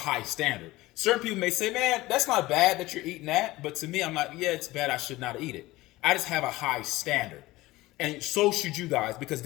standard. Certain people may say, man, that's not bad that you're eating that. But to me, I'm like, yeah, it's bad. I should not eat it. I just have a high standard. And so should you guys, because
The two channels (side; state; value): right; quieter; 18.8 dB